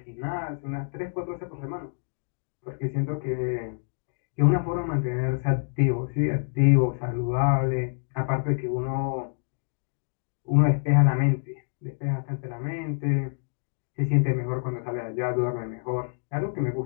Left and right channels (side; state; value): right; silent; digital silence